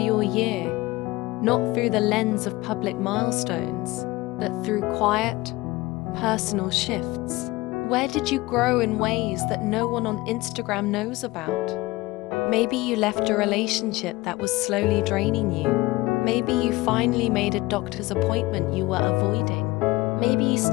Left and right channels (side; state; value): right; quieter; 20.3 dB